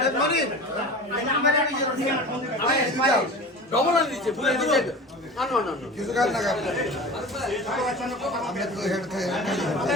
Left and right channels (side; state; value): both; normal; correlation 0.34